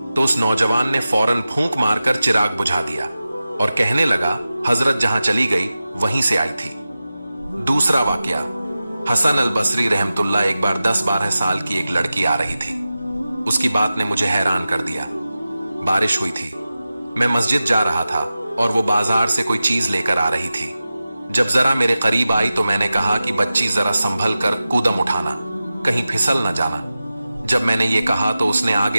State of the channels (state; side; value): inverted; both; correlation -0.94